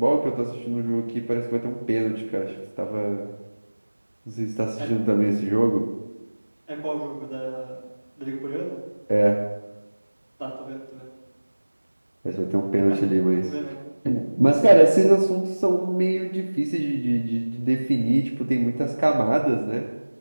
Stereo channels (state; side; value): inverted; both; correlation -1.00